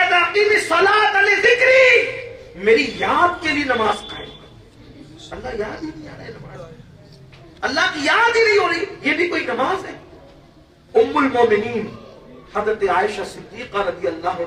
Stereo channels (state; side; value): identical; both; correlation 1.00